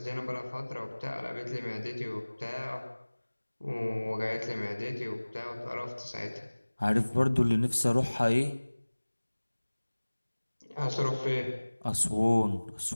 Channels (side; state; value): both; inverted; correlation -1.00